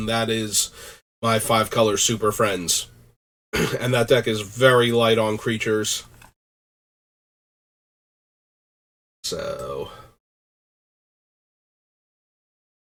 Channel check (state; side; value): identical; both; correlation 1.00